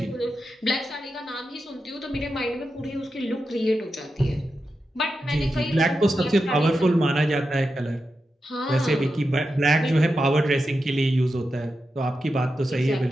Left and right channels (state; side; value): normal; both; correlation 0.89